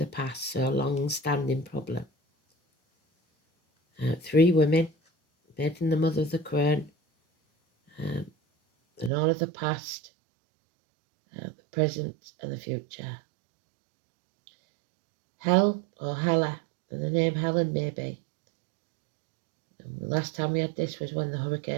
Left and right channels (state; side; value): drops out; left; at 9.1 s